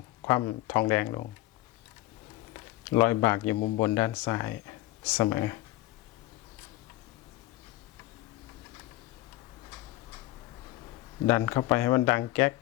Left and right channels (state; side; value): quieter; right; 17.4 dB